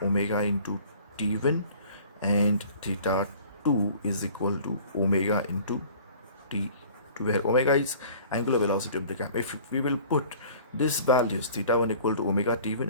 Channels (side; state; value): both; inverted; correlation -0.48